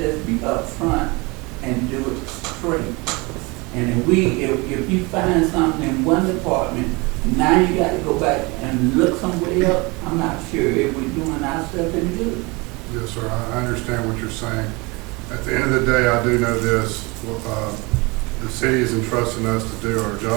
be upfront and do it straight. And if you find something in one department, now you got to go back and look somewhere else. I'm not sure if we're doing ourselves any good. Yes, sir, I understand what you're saying. At the end of the day, I do know this, the city is entrusting us to do our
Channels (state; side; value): quieter; left; 26.1 dB